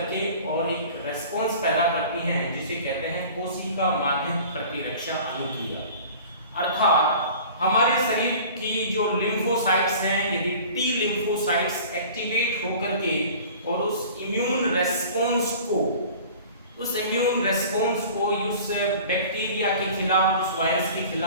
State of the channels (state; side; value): inverted; both; correlation -0.43